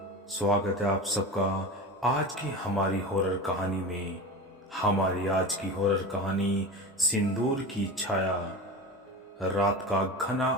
स्वागत है आप सबका आज की हमारी हॉरर कहानी में। हमारी आज की हॉरर कहानी सिंदूर की छाया। रात का घना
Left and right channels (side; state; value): both; normal; correlation 0.28